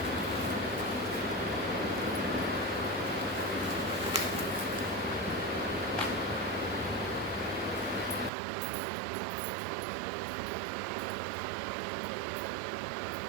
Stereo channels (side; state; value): left; drops out; at 8.3 s